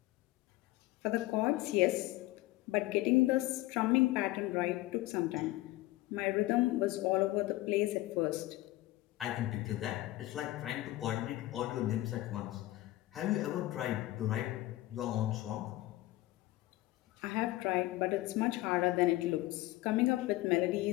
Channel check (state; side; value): quieter; right; 17.7 dB